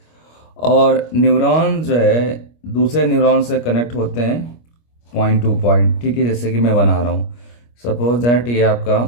और न्यूरॉन जो है दूसरे न्यूरॉन से कनेक्ट होते हैं पॉइंट टू पॉइंट, ठीक है। जैसे कि मैं बना रहा हूं, सपोज दैट ये आपका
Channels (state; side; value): late; right; 25 ms